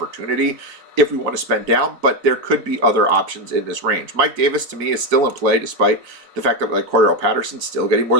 if we want to spend down, but there could be other options in this range. Mike Davis, to me, is still in play, despite the fact that like Cordell Patterson's still getting more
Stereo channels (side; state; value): left; late; 4.0 ms